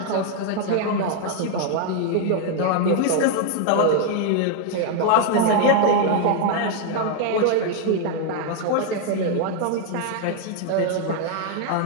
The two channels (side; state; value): both; different; correlation 0.00